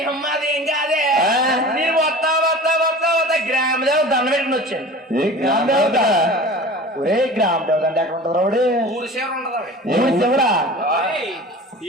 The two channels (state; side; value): normal; both; correlation 0.38